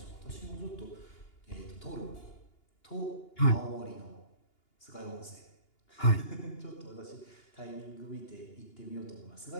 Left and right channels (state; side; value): late; right; 2.8 ms